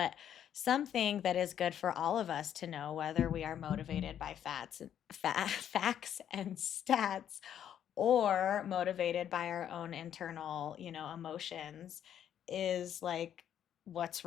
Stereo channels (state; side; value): quieter; right; 9.9 dB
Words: something that is good for all of us to know, whether we are motivated by facts and stats or motivated by our own internal, emotions, is like what's